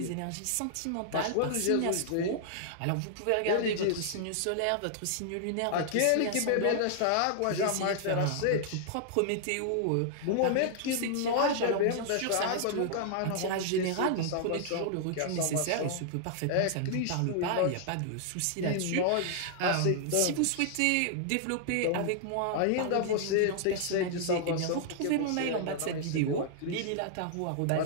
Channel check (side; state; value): both; different; correlation -0.01